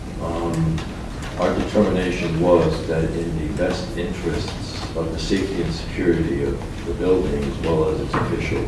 our determination was that in the best interests of the safety and security of the building as well as its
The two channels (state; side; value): identical; both; correlation 1.00